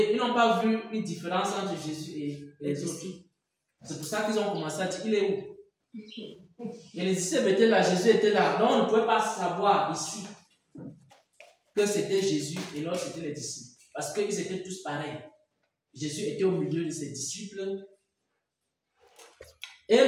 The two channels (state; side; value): identical; both; correlation 1.00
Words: ils n'ont pas vu une différence entre Jésus et les autres. C'est pour ça qu'ils ont commencé à dire, il est où? Et les disciples étaient là, Jésus était là. Donc on ne pouvait pas savoir ici que c'était Jésus et l'autre c'était les disciples. Parce qu'ils étaient tous pareils. Jésus était au milieu de ses disciples. Et